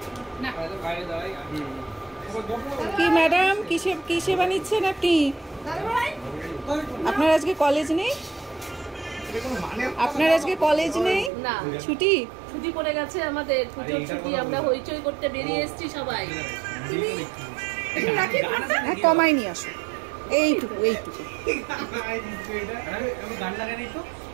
কি ম্যাডাম কিসে বানিয়েছেন আপনি? আপনার আজকে কলেজ নেই? আপনার আজকে কলেজ নেই? না, ছুটি পড়ে গেছে আমাদের, পুজোর ছুটি। আমরা হইচই করতে বেরিয়ে এসেছি সবাই। হ্যাঁ, কমাই নিয়ে আসো, এইটুকু।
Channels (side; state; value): left; drops out; at 11.3 s